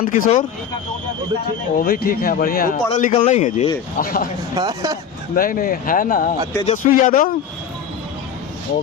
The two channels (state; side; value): quieter; right; 7.2 dB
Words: किशोर? वो भी ठीक है, बढ़िया। वो पढ़ा लिखा नहीं है जी। नहीं है ना। तेजस्वी यादव? वो